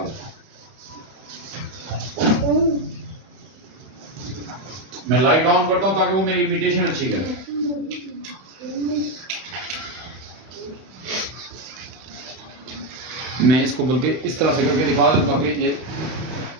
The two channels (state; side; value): late; left; 31 ms